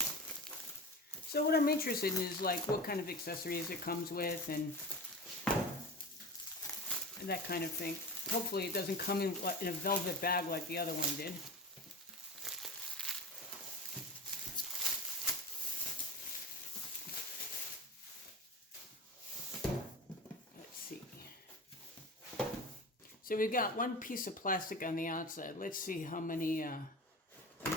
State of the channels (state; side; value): normal; both; correlation 0.30